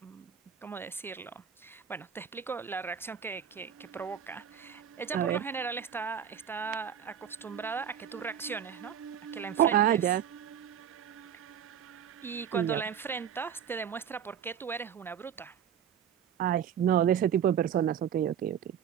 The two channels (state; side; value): quieter; left; 8.8 dB